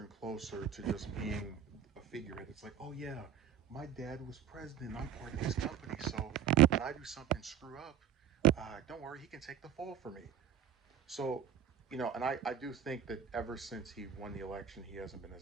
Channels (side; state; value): left; quieter; 8.9 dB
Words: closer to just being a figurehead. It's like, oh yeah, my dad was president. I'm part of his company, so when I do something screw up, don't worry, he can take the fall for me. So, and I do think that ever since he won the election, he hasn't been